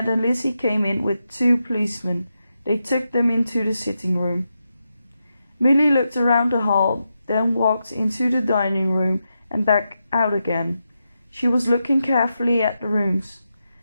and Lizzie came in with 2 policemen. They took them into the sitting room. Milly looked around the hall, then walked into the dining room and back out again. She was looking carefully at the rooms.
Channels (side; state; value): both; inverted; correlation -0.87